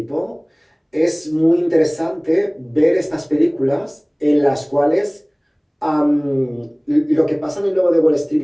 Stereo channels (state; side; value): identical; both; correlation 1.00